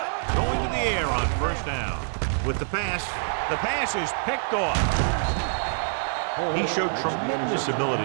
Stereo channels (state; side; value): silent; left; digital silence